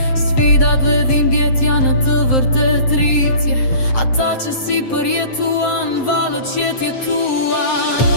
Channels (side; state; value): right; late; 7.6 ms